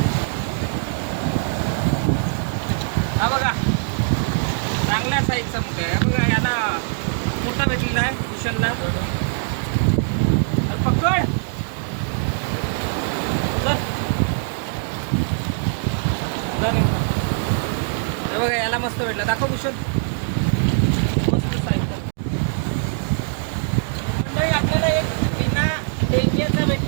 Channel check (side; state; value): left; silent; digital silence